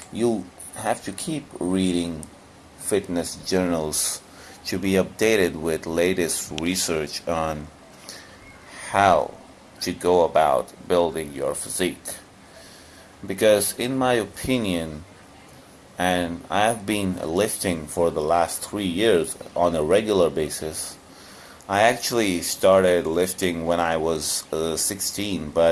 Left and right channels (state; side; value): identical; both; correlation 1.00